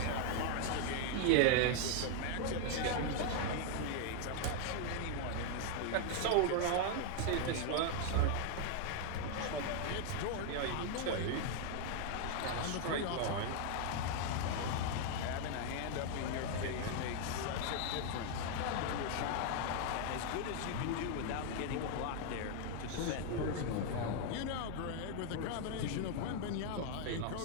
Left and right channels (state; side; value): different; both; correlation 0.00